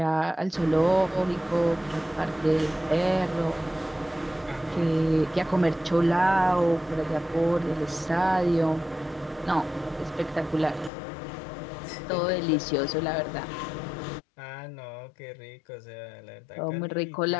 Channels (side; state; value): right; drops out; at 10.9 s